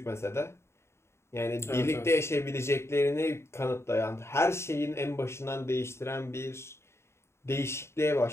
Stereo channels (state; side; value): late; right; 0.13 ms